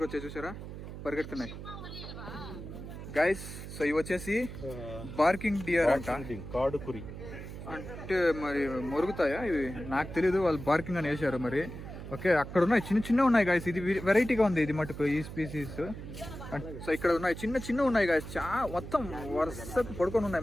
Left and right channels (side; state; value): right; noise; hum, 10 dB below the sound